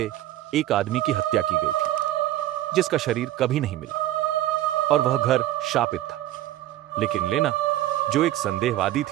एक आदमी की हत्या की गई थी जिसका शरीर कभी नहीं मिला और वह घर शापित था। लेकिन लेना, जो एक संदेहवादी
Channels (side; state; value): left; quieter; 14.0 dB